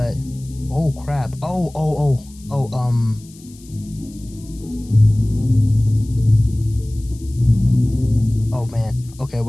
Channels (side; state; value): left; noise; hiss, 24 dB below the sound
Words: oh crap! Oh man. Okay,